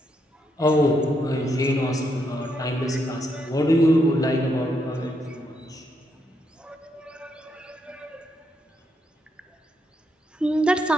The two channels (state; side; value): normal; both; correlation 0.78